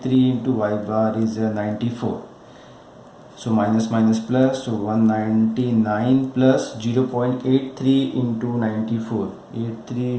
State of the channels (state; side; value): identical; both; correlation 1.00